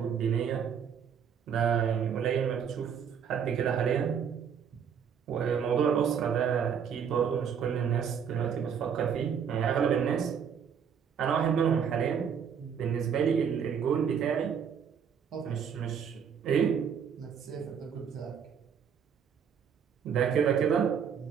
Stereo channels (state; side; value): quieter; left; 7.5 dB